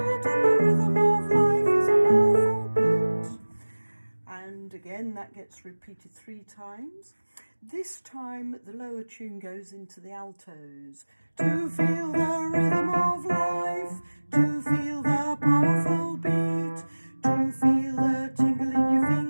and the rhythm of life is a powerful beat. And again, that gets repeated 3 times. This time the lower tune goes into the altos. To feel the rhythm of life, to feel the powerful beat, to feel the tingle in your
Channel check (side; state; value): both; inverted; correlation -1.00